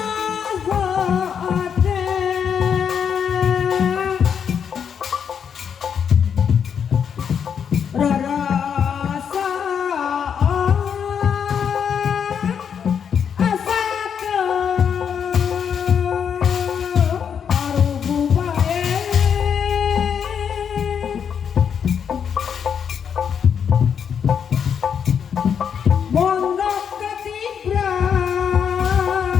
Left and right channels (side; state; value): right; quieter; 7.5 dB